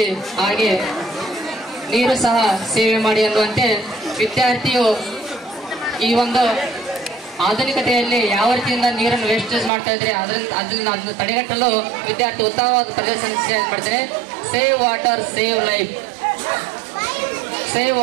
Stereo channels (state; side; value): drops out; left; at 9.7 s